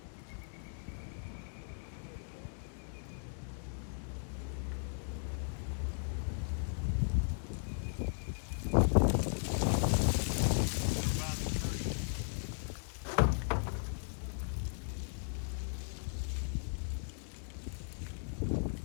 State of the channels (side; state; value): right; silent; digital silence